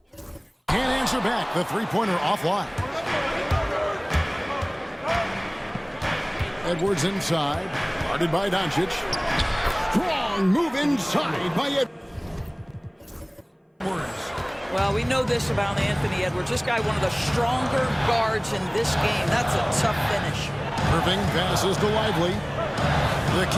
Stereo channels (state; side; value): identical; both; correlation 1.00